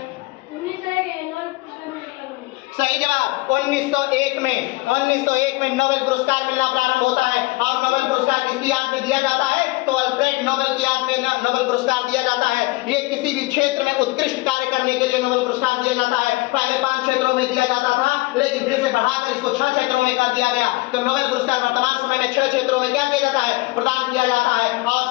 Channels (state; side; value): quieter; right; 22.1 dB